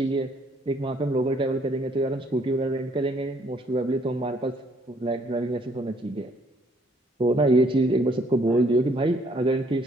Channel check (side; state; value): both; normal; correlation 0.65